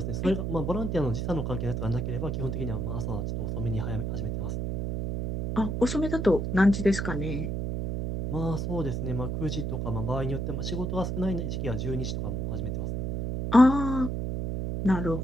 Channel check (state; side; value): noise; right; hum, 2 dB below the sound